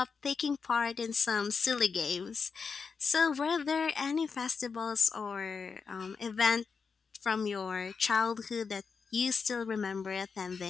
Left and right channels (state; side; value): quieter; right; 5.5 dB